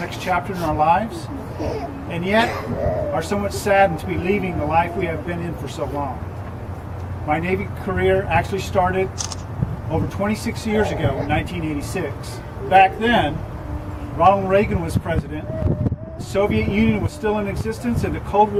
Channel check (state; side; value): identical; both; correlation 1.00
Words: chapter in our lives, and yet are somewhat saddened to be leaving the life we have been in for so long. My Navy career actually started over 26 years ago in 1986. Back then, Ronald Reagan was president, the Soviet Union was still in existence, and the Cold